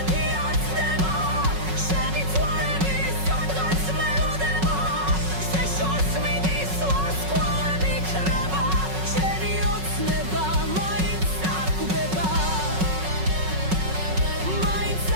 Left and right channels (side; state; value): left; late; 5.4 ms